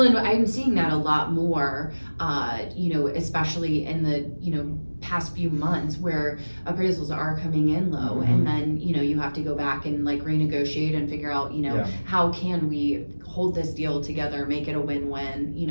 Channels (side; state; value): both; inverted; correlation -1.00